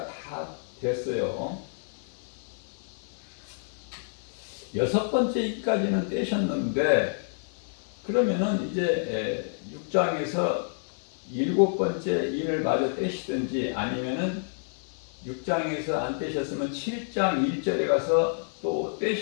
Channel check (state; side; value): silent; right; digital silence